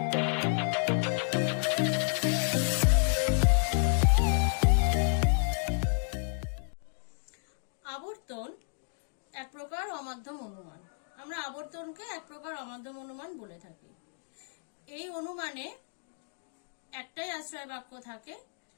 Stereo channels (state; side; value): silent; right; digital silence